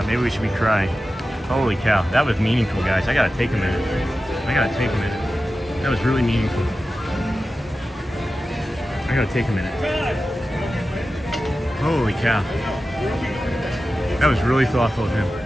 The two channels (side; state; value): both; normal; correlation 0.93